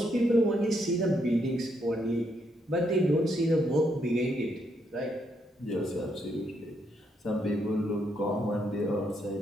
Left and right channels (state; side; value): normal; both; correlation 0.76